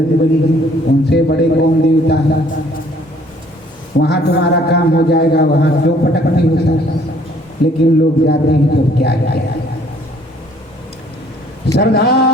बली हैं, उनसे बड़े कौन देवता है। वहाँ तुम्हारा काम हो जाएगा, वहाँ क्यों पटकते हो सर? लेकिन लोग जाते हैं तो क्या किया। श्रद्धा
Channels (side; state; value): both; normal; correlation 0.59